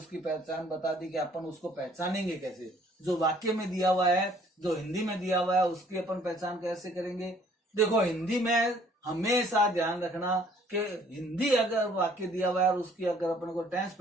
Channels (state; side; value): normal; both; correlation 0.59